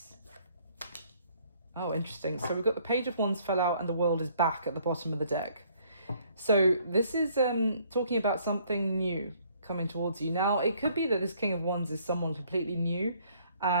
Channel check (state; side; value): inverted; both; correlation -0.63